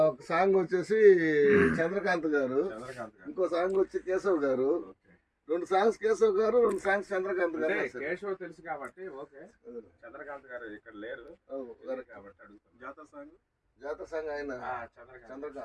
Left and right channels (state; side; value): identical; both; correlation 1.00